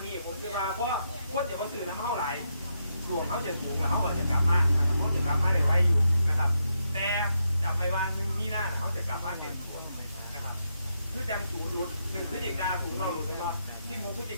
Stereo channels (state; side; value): inverted; both; correlation -0.81